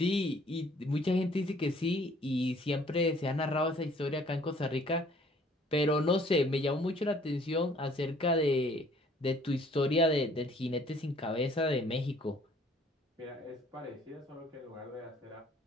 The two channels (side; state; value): both; normal; correlation 0.58